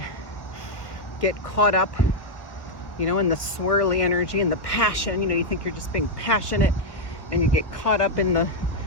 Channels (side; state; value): right; late; 1.5 ms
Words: get caught up, in the swirly energy and the passion. You think you're just being passionate, and you get caught up in the